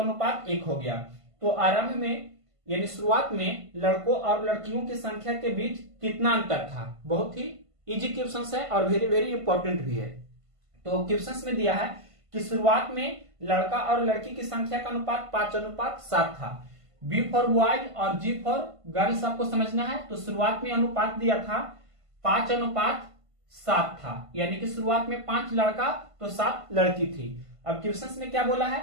हो गया। तो आरंभ में यानी शुरुआत में लड़कों और लड़कियों की संख्या के बीच कितना अंतर था। बहुत ही इजी क्वेश्चन है और वेरी वेरी इंपॉर्टेंट भी है। तो क्वेश्चन में दिया है कि शुरुआत में लड़का और लड़की की संख्या का अनुपात 5:7 था। बी फॉर बॉयज और जी फॉर गर्ल्स आपको समझना है। तो शुरुआत में अनुपात दिया था 5:7 था, यानी कि शुरुआत में 5 लड़का तो 7 लड़की थी। अब क्वेश्चन में क्या बोला है,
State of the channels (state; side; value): late; left; 1.5 ms